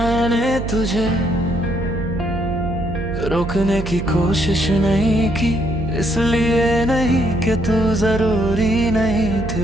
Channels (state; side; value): noise; right; hum, 6 dB below the sound